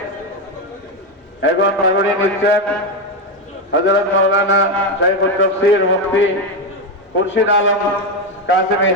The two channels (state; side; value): normal; both; correlation 0.10